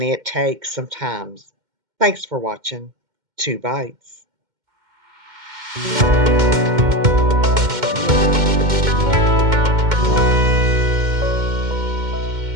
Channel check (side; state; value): left; late; 2.1 ms